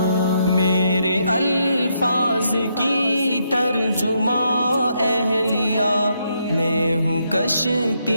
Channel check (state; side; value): inverted; both; correlation -0.77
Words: میرے الفاظ کی ترجمہ اہلیہ، میں ہوں